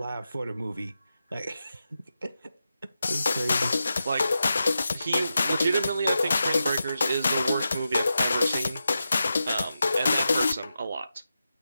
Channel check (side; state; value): both; inverted; correlation -0.90